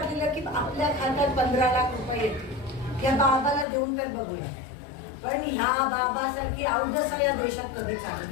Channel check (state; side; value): drops out; right; at 3.7 s